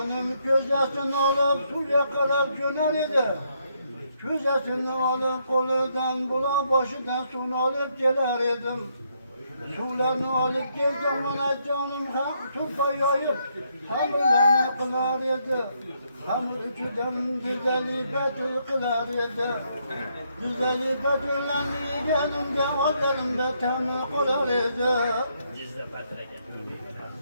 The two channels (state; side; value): inverted; both; correlation -0.74